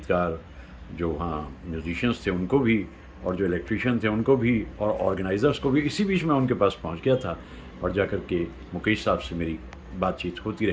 जो वहाँ म्यूजिशियंस थे उनको भी और जो इलेक्ट्रीशियन थे उनको भी और ऑर्गेनाइज़र्स को भी। इसी बीच मैं उनके पास पहुँच गया था और जाकर के मुकेश साहब से मेरी बातचीत होती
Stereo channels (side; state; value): both; identical; correlation 1.00